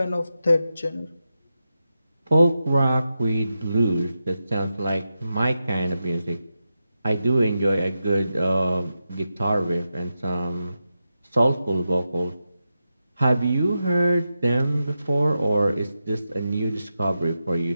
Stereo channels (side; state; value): both; inverted; correlation -0.89